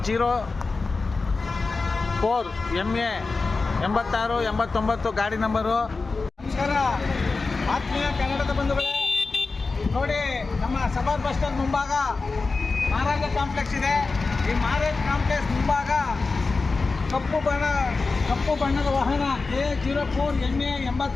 MA 8689 ಗಾಡಿ ನಂಬರು. ನಮಸ್ಕಾರ ಆತ್ಮೀಯ ಕನ್ನಡದ ಬಂಧುಗಳೇ, ನೋಡಿ ನಮ್ಮ ಸಬಾದ್ ಬಸ್ ಸ್ಟ್ಯಾಂಡ್ ಮುಂಭಾಗ ಮಹಾರಾಜ ಕಾಂಪ್ಲೆಕ್ಸ್ ಇದೆ. ಈ ಮಹಾರಾಜ ಕಾಂಪ್ಲೆಕ್ಸ್ ಮುಂಭಾಗ ಕಪ್ಪು ಬಣ್ಣದ ವಾಹನ KH04 MA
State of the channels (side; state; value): right; quieter; 4.0 dB